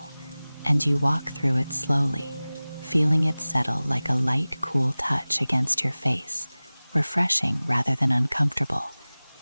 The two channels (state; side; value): inverted; both; correlation -0.99